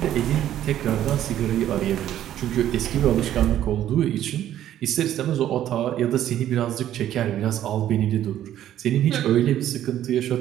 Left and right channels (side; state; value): left; quieter; 11.8 dB